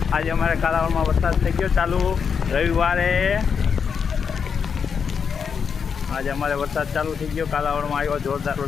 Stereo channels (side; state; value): right; quieter; 6.5 dB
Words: આજે અમારે કાલાવડમાં વરસાદ થઈ ગયો ચાલુ રવિવારે. આજે અમારે વરસાદ ચાલુ થઈ ગયો, કાલાવડમાં આવ્યો જોરદાર